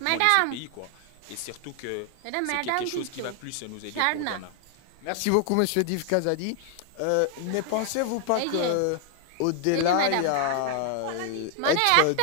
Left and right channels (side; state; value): both; different; correlation 0.00